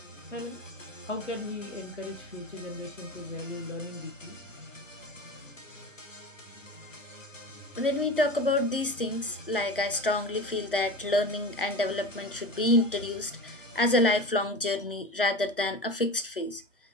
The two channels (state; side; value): normal; both; correlation 0.30